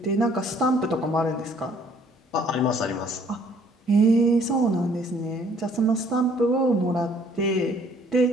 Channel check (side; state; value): both; normal; correlation 0.60